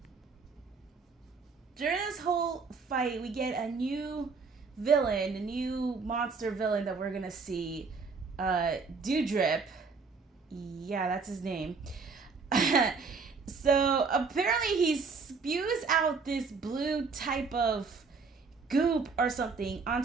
During this whole fight, we get a new villain, a new monster villain that we're gonna see. Dewdrip. Yeah, that's his name. So apparently he spews out this blue type of goop or something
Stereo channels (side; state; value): left; quieter; 4.7 dB